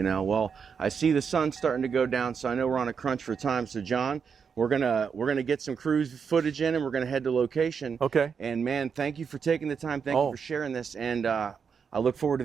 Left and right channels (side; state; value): left; quieter; 6.3 dB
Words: I see the sun's starting to go down, so I know we're on a crunch for time. So, John, we're gonna get some cruise footage in, and we're gonna head to location. Okay. And man, thank you for taking the time. Thank you for sharing this, and I look forward to